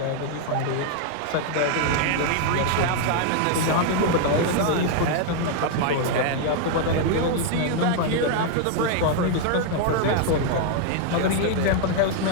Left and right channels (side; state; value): both; different; correlation 0.00